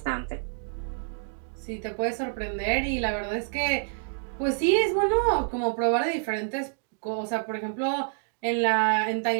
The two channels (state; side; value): silent; left; digital silence